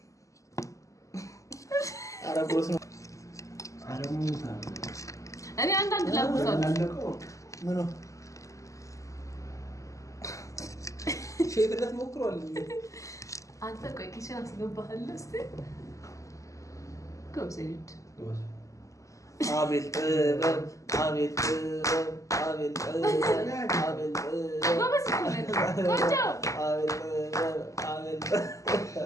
አረጎስ ነው አረሙታ እኔ አንዳንድ ላቁታለሁ አላለቀው ምን ነው ሼፍነት ሞክሯል። አንተ ቆይ ኪችን አስገባለሁ እስቲ ጎብዘይድ አቤት አቤት አቤት አቤት ጎበዝ ቆንጆ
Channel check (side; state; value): right; late; 0.16 ms